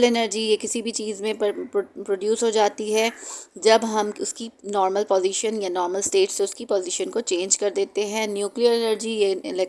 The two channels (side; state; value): both; identical; correlation 1.00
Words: एनर्जी, ये किसी भी चीज़ में प्रोड्यूस हो जाती है जब हम उसकी नॉर्मल पोजीशन या नॉर्मल स्टेट से उसकी पोजीशन को चेंज कर देते हैं। न्यूक्लियर एनर्जी, ये